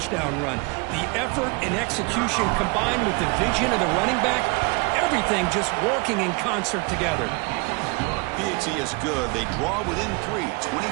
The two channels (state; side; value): quieter; left; 28.9 dB